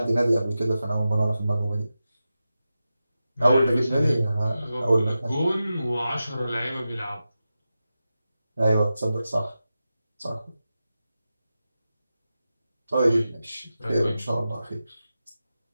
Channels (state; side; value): inverted; both; correlation -0.92